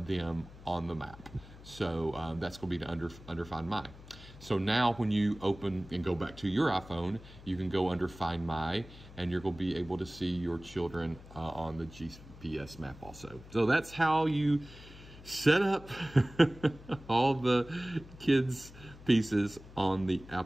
on the map. So that's going to be under Find My. So now when you open and go back to your iPhone, you can go under Find My, and you're going to be able to see your children on the GPS map also. So that's how you set up all the kids' pieces on the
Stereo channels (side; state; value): left; noise; hum, 18 dB below the sound